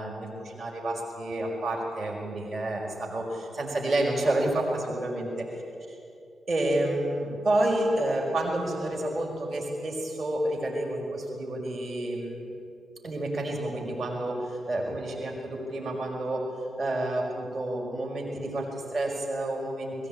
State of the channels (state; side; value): normal; both; correlation 0.89